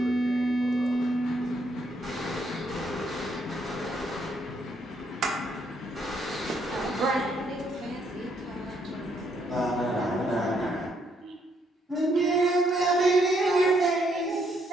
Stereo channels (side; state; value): both; normal; correlation 0.72